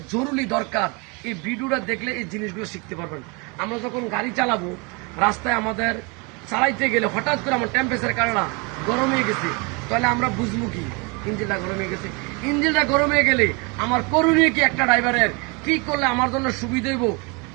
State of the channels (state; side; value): quieter; left; 30.1 dB